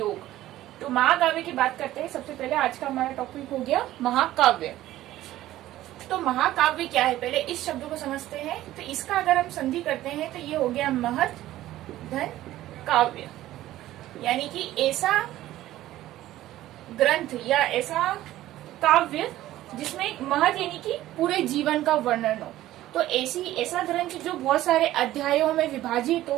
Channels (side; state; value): left; quieter; 14.7 dB